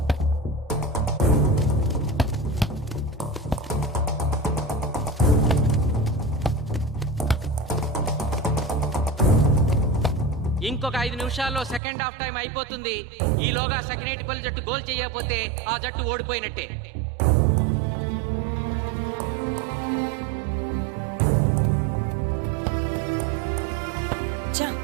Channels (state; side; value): drops out; left; at 11.8 s